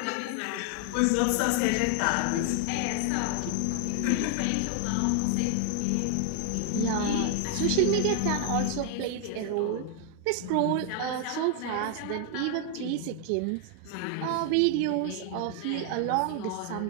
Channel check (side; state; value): both; different; correlation 0.00